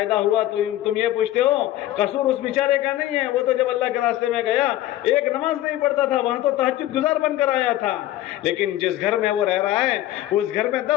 ہوا تم یہ پوچھتے ہو؟ قصور اس بیچارے کا نہیں ہے، وہ تو جب اللہ کے راستے میں گیا ایک نماز نہیں پڑھتا تھا، وہاں تو تہجد گزار بن کر آیا تھا، لیکن جس گھر میں وہ رہ رہا ہے اس گھر میں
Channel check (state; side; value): quieter; right; 14.4 dB